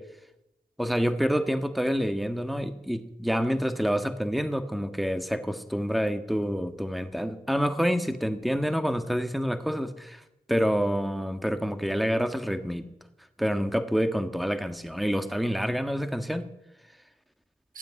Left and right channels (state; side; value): normal; both; correlation 0.97